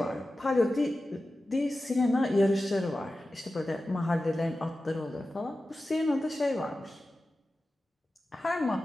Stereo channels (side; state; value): both; normal; correlation 0.94